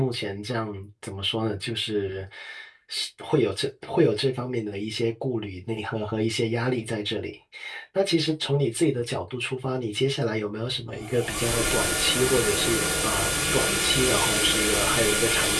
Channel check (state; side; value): identical; both; correlation 1.00